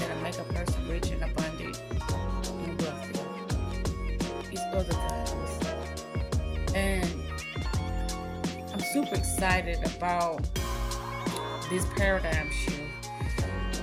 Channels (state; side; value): identical; both; correlation 1.00